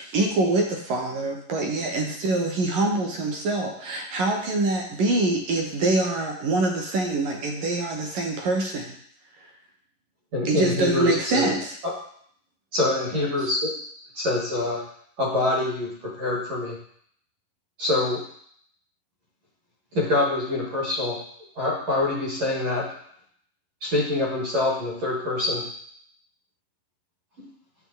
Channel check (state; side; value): late; left; 11 ms